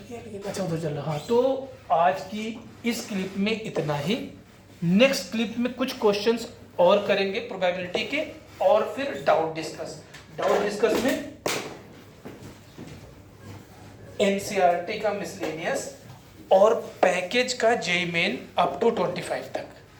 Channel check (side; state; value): both; identical; correlation 1.00